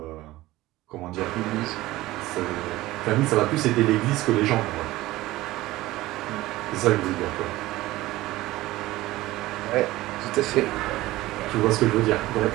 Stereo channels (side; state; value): left; quieter; 17.6 dB